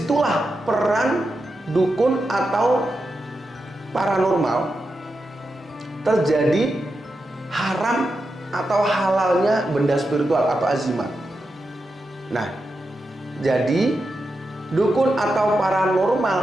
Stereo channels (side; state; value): both; normal; correlation 0.88